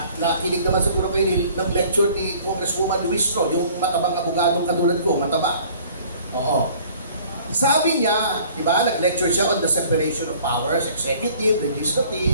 nakinig naman siguro kayo ng lecture ni Congresswoman Luis Tro, yung matabang abogadong katulad ko, mataba. Oo. Sabi niya, di ba, nag-lecture siya on the separation of powers, executive,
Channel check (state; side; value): inverted; both; correlation -0.52